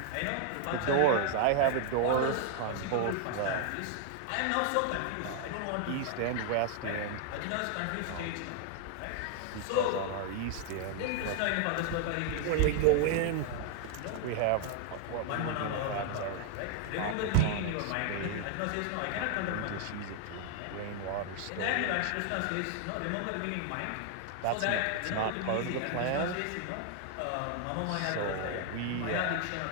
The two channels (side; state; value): both; different; correlation 0.00